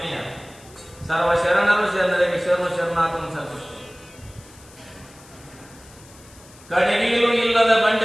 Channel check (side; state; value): left; noise; hiss, 24 dB below the sound